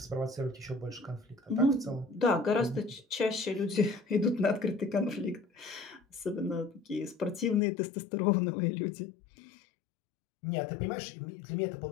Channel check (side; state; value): right; drops out; at 7.6 s